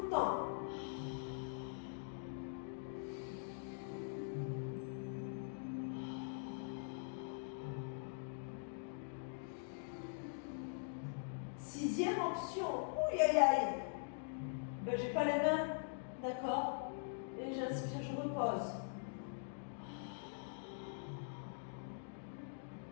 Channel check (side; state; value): right; silent; digital silence